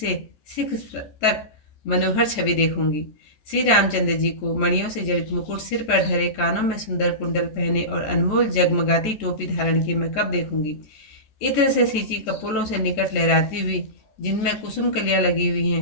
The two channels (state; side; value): late; right; 14 ms